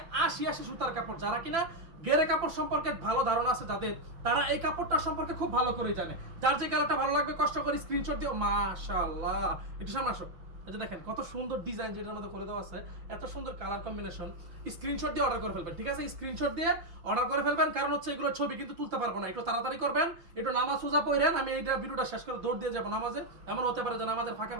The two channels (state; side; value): late; left; 5.9 ms